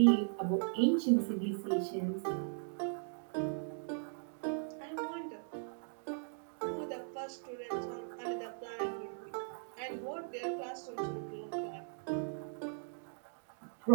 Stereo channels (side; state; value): left; silent; digital silence